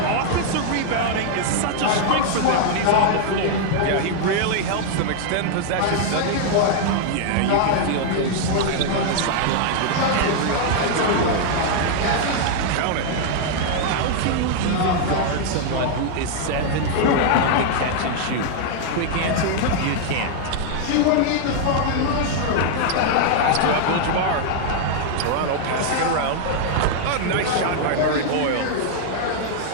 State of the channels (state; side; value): different; both; correlation 0.00